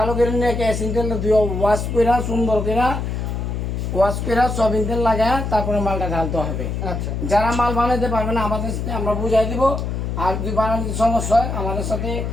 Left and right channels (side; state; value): left; noise; hum, 3 dB below the sound